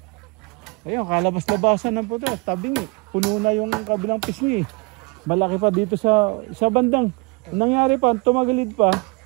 Ayun, kalabas-labasan ng puto, tabing eh. Puno na yung kabilang pisngi eh. Malaki pa dito sa bandang. Ang nangyari pa, tumagilid pa,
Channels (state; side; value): quieter; left; 29.5 dB